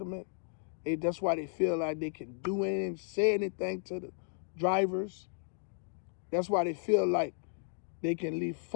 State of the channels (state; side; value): silent; right; digital silence